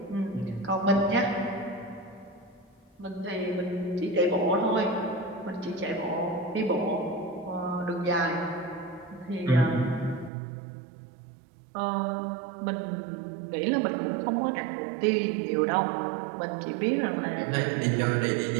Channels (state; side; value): drops out; left; at 10.3 s